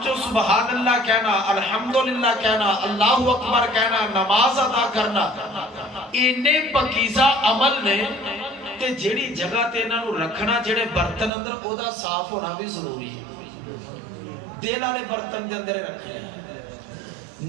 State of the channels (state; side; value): drops out; left; at 11.3 s